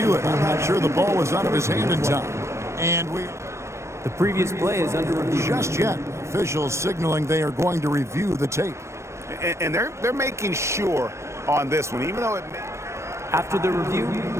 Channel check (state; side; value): late; left; 0.13 ms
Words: it. I'm not sure the ball was out of his hand in time. And The previous play is under review. just yet, officials signaling they are going to review the tape. And they're making sure on this one, even though it After the review,